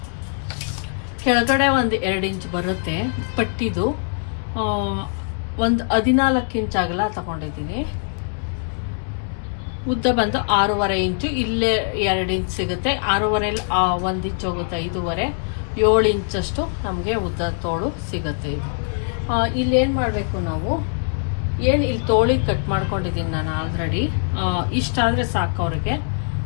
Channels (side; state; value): right; silent; 64 dB below the other